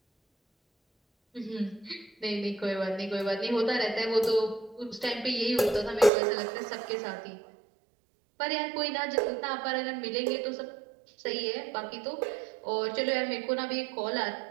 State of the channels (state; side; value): drops out; left; at 6.1 s